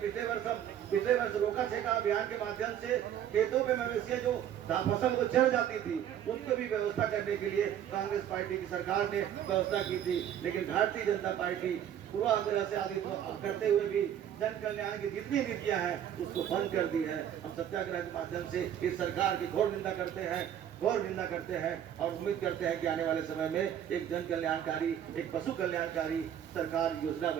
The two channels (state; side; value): quieter; left; 10.1 dB